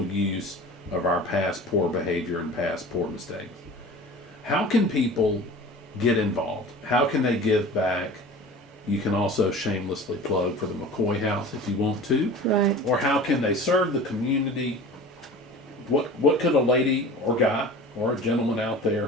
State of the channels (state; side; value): normal; both; correlation 0.39